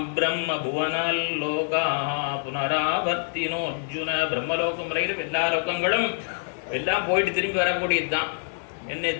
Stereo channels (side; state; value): right; silent; digital silence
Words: பிரம்ம புவனால் லோகா புனராவர்த்தினோ அர்ஜுன. பிரம்மலோகம் வரையிலும் எல்லா லோகங்களும் எல்லாம் போயிட்டு திரும்பி வரக்கூடியது தான் என்ன